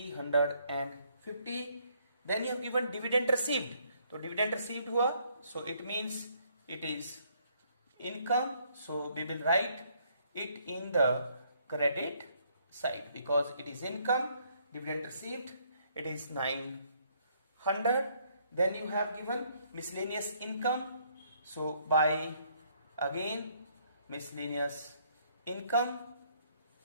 Then you have given dividend received. तो डिविडेंड रिसीव्ड हुआ, so it means it is income. So we will write it in the credit side because it is income. Dividend received it is 900. Then you have given miscellaneous income. So by again miscellaneous income,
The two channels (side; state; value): both; inverted; correlation -0.68